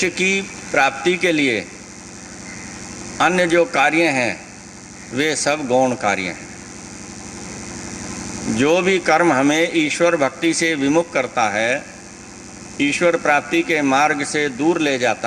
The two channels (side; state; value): both; identical; correlation 1.00